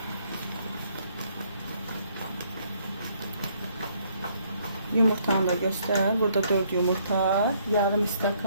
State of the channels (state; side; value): inverted; both; correlation -0.67